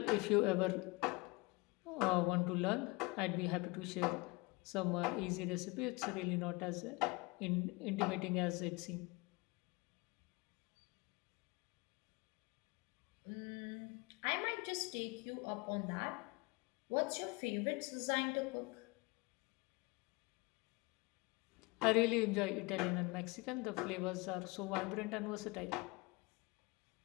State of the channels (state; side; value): quieter; right; 26.3 dB